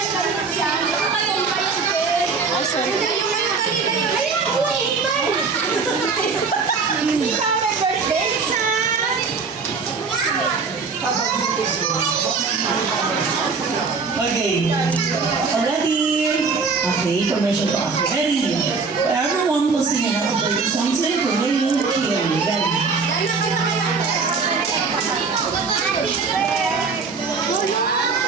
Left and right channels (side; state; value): left; quieter; 4.8 dB